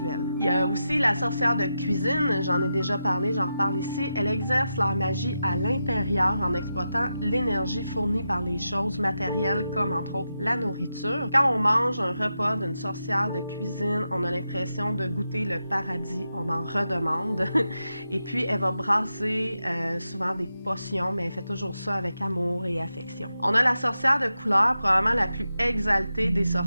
Il y a aussi la sorcière de cuisine, j'en ai déjà parlé, j'en reparle ici. Elle exerce leur magie à l'intérieur en exploitant l'énergie fournie par les choses matérielles comme, entre autres, la nourriture. Quand on mange un repas d'une sorcière de cuisine, on a l'impression de goûter le paradis, on en redemande. Et puis, elle va brasser souvent des potions, mais elle fait toujours ça avec amour et affection. On a la sorcière de couleur, probablement la plus exaltée des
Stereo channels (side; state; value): both; inverted; correlation -0.88